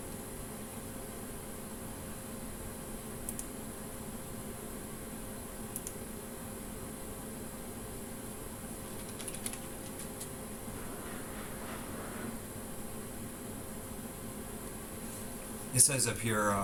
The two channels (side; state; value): both; identical; correlation 1.00